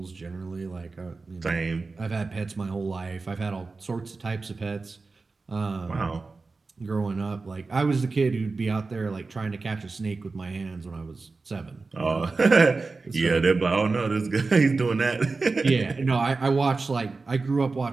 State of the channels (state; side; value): quieter; left; 3.9 dB